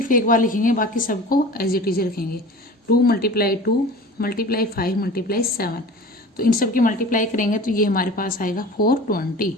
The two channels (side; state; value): both; normal; correlation 0.39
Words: एक बार लिखेंगे, बाकी सबको एज इट इज रखेंगे. 2 मल्टीप्लाई 2 मल्टीप्लाई 5 मल्टीप्लाई 7. तो इन सब की मल्टीप्लाई करेंगे तो ये हमारे पास आएगा 420.